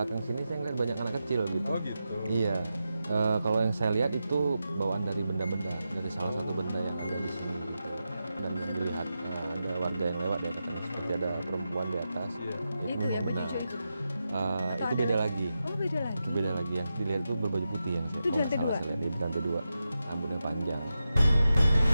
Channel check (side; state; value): both; inverted; correlation -0.89